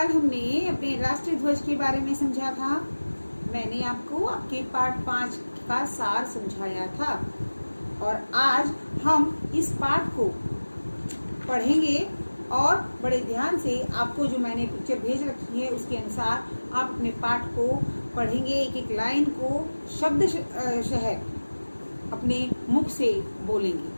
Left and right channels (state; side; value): inverted; both; correlation -1.00